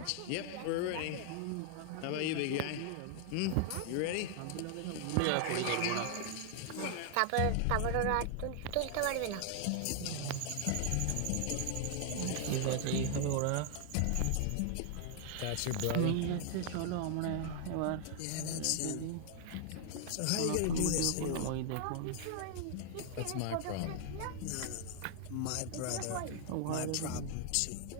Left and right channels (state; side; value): different; both; correlation 0.00